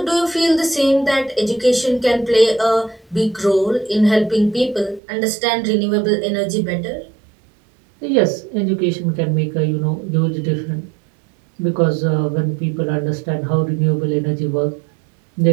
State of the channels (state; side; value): drops out; left; at 5.0 s